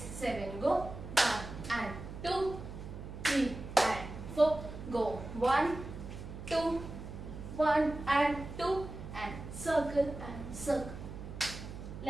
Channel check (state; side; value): noise; right; hum, 10 dB below the sound